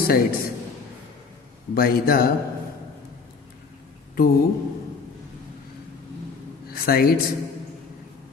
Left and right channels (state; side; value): quieter; right; 4.9 dB